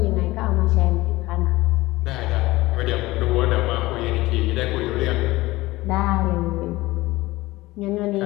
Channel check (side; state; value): right; quieter; 19.3 dB